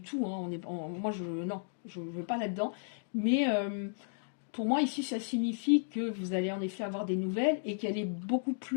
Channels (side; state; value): right; silent; digital silence